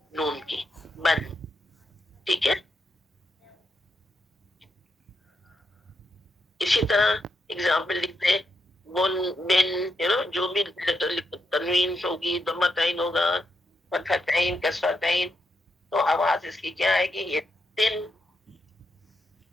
नून की, बन, ठीक है। इसी तरह एग्जाम्पल लिखते हैं बुन, बिन, जो भी तनवीन होगी, दम्मतैन होगा, फतहतैन, कसरतैन, तो आवाज इसकी क्या आएगी? ये तिन,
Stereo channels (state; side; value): normal; both; correlation 0.83